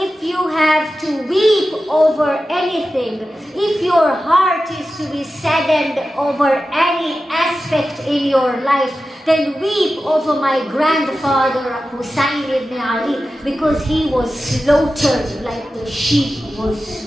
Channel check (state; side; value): normal; both; correlation 0.93